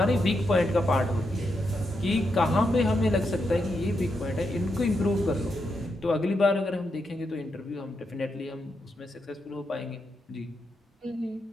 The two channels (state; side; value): normal; both; correlation 0.83